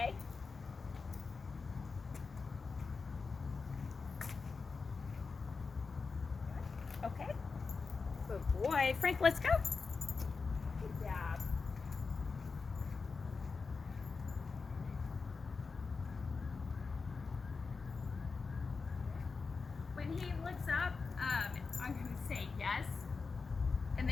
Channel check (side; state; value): right; quieter; 4.6 dB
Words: Good boy. Frank, let's go. Good job. When he looks up, I'm going to say yes. And